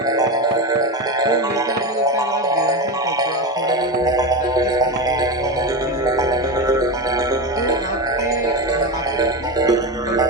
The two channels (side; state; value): both; normal; correlation 0.19